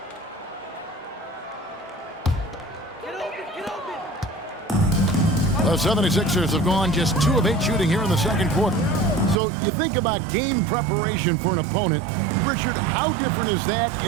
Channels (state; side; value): drops out; left; at 9.4 s